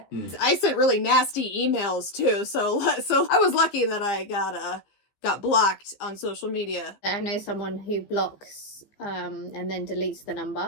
I sent really nasty emails too, so I was lucky that I got blocked on social media. I know someone who blocks and then deletes the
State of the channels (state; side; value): late; right; 15 ms